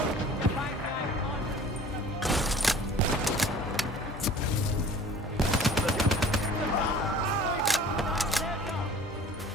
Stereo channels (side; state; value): both; normal; correlation 0.47